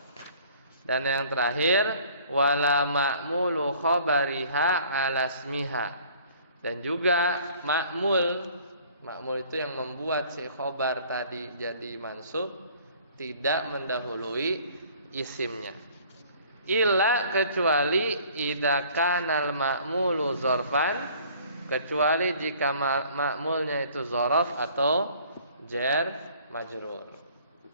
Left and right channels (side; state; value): both; inverted; correlation -0.53